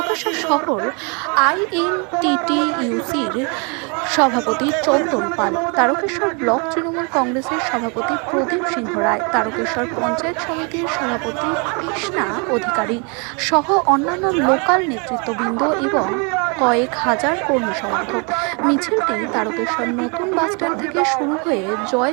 শহর আইএনটিটিইউসির সভাপতি চন্দন পাল, তারকেশ্বর ব্লক তৃণমূল কংগ্রেসের সভাপতি প্রদীপ সিংহ রায়, তারকেশ্বর পঞ্চায়েত সমিতির সভাপতি কৃষ্ণা অধিকারী সহ অন্যান্য লোকাল নেতৃত্ববৃন্দ এবং কয়েক হাজার কর্মী সমর্থক। মিছিলটি তারকেশ্বর নতুন বাসস্ট্যান্ড থেকে শুরু হয়ে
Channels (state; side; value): quieter; left; 34.2 dB